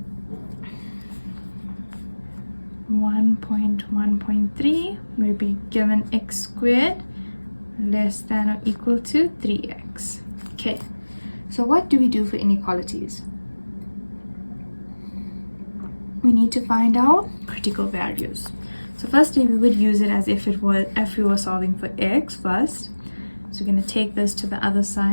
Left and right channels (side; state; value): both; inverted; correlation -1.00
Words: One point 1.3 will be given x squared less than or equal to 3x. Okay, so what do we do for inequalities? We need to find out critical values. So firstly, we would use it as if we were solving for x first. So we're going to take this to the other